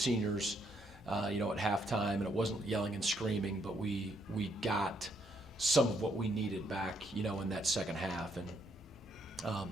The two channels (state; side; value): normal; both; correlation 0.73